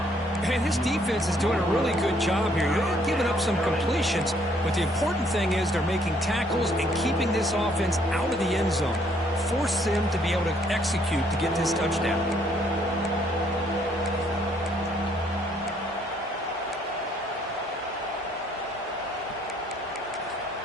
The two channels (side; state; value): both; normal; correlation 0.66